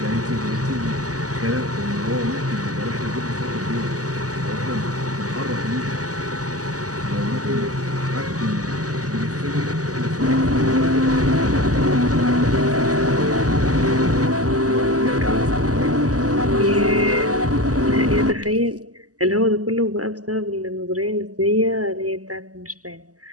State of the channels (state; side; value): late; left; 0.67 ms